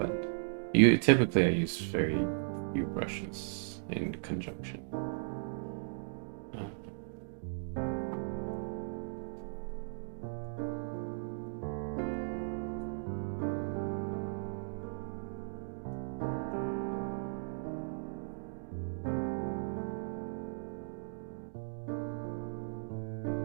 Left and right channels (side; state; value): left; silent; digital silence